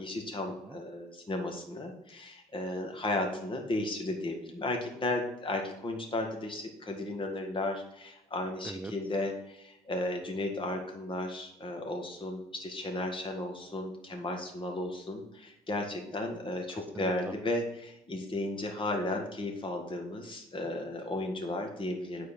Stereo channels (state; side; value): normal; both; correlation 0.51